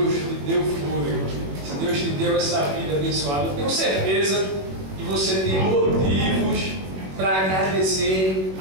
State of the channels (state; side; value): late; left; 21 ms